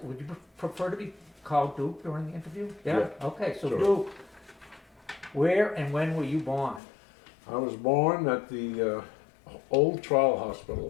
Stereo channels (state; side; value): drops out; right; at 6.8 s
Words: would you prefer to be called Duke during the interview? Yeah. Okay, so Sure. Duke, where and when were you born? I was born at the Old Trial